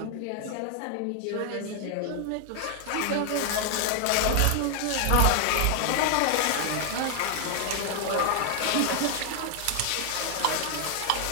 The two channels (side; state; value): both; different; correlation 0.00